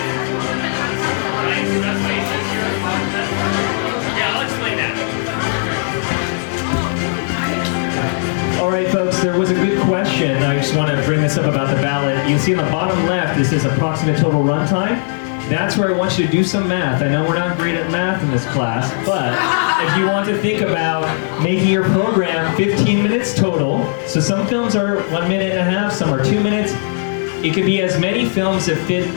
Right, so that's why it says here. Yeah, I'll explain that. All right, folks, there was a good question. I just want to bring this up about the ballot. You can see on the bottom left, this is approximate total runtime. That's where I want you to do some math. I know we're not great at math in this class, but if you want to think about making your program 15 minutes total, so some films are 1.5 minutes, some are 2 minutes. It could be as many films that fit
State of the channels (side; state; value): right; silent; digital silence